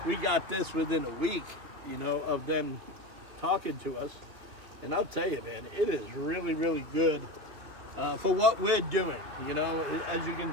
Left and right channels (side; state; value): left; late; 3.1 ms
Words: we got this within a week, you know, of them talking to us. And I'll tell you, man, it is really, really good for what we're doing. You know, as you can